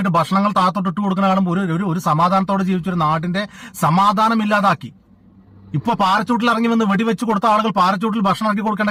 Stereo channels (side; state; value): both; identical; correlation 1.00